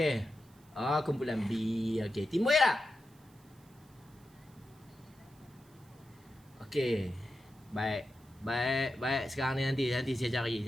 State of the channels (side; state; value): right; noise; hiss, 30 dB below the sound